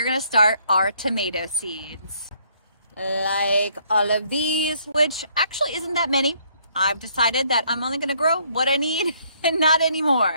gonna start our tomato seeds. Like all of these, which actually isn't that many. I've decided that I'm only gonna grow what I need and not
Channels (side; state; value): both; inverted; correlation -0.66